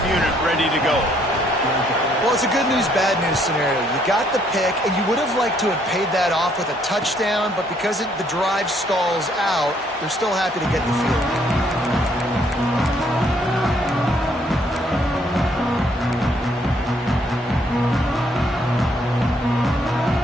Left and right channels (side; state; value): both; normal; correlation 0.67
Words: unit ready to go. Well, it's a good news, bad news scenario. You got the pick, and you would have liked to have paid that off with a touchdown, but because the drive stalls out, they're still happy to get the field goal.